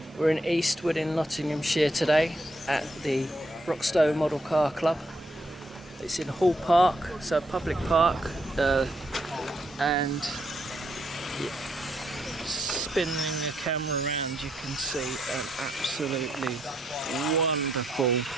We're in Eastwood in Nottinghamshire today at the Broxtowe Model Car Club. It's in Hall Park, so a public park, and spinning the camera around you can see an absolutely wonderful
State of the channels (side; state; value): both; normal; correlation 0.75